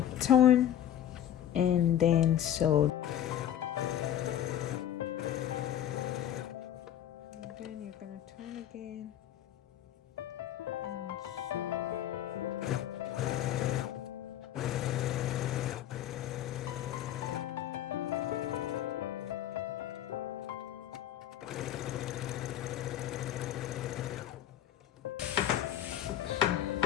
to turn and then sew. And then you're going to turn again and sew.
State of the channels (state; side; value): quieter; right; 11.1 dB